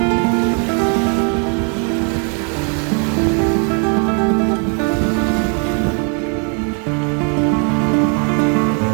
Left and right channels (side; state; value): left; quieter; 39.9 dB